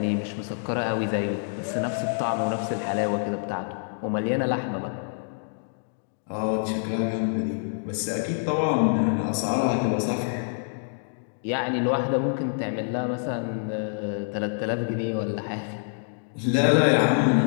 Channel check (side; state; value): right; silent; digital silence